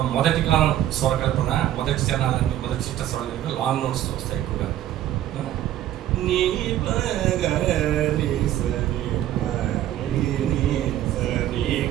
మొదటి కాలం స్వరకల్పన, మొదటి చరణాలన్నీ మొదటి చిత్తస్వరాల దగ్గర లాంగ్ నోట్స్తో వస్తాయి ఎక్కువగా. నీ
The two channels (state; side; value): quieter; left; 12.5 dB